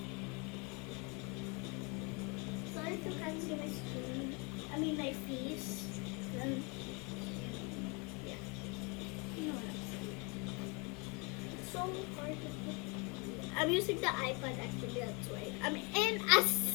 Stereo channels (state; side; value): quieter; right; 31.1 dB